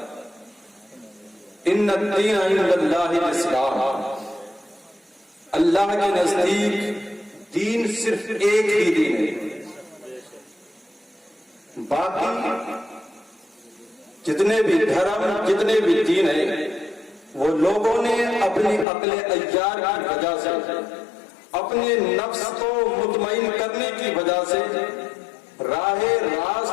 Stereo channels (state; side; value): drops out; right; at 18.9 s